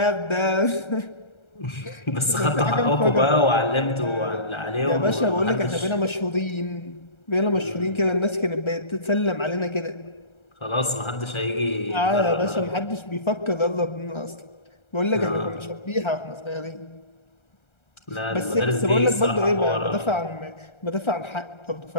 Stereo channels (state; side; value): late; right; 1.3 ms